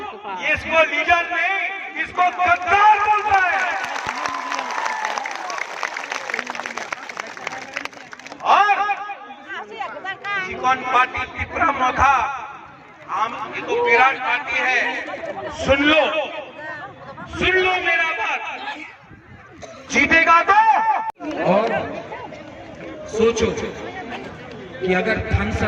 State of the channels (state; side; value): identical; both; correlation 1.00